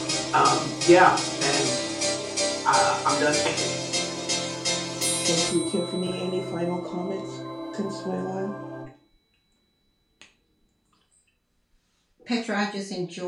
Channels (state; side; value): identical; both; correlation 1.00